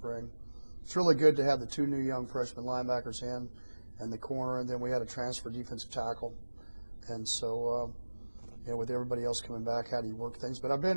it's really good to have the 2 new young freshman linebackers in and the corner, and then we had a transfer defensive tackle. And so with everybody else coming back, how do you work things? But I've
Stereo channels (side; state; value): both; inverted; correlation -1.00